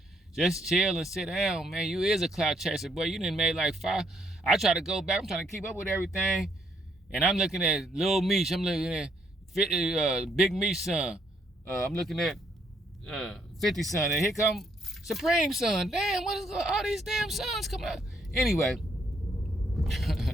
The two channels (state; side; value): normal; both; correlation 0.71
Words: Just chill and sit down, man. You is a clout chaser, boy. You done made like 5. I try to go back. I'm trying to keep up with everything. And I'm looking at Lil Meech. I'm looking at Big Meech son. I'm looking at 50 son. And here come Supreme son. Damn, what is all these damn sons coming out? Anyway,